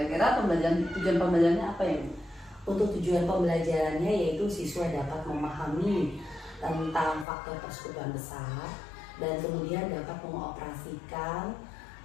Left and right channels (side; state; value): right; drops out; at 7.2 s